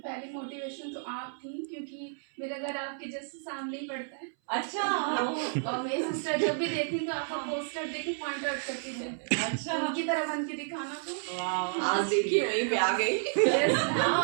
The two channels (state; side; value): silent; left; 57 dB below the other